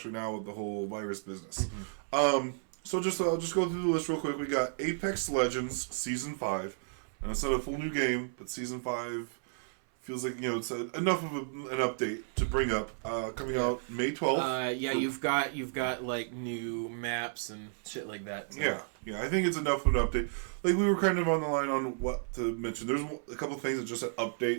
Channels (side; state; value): left; silent; 56 dB below the other